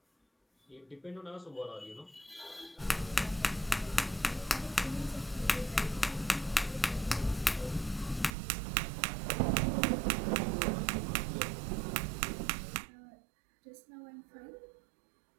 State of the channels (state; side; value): drops out; left; at 8.3 s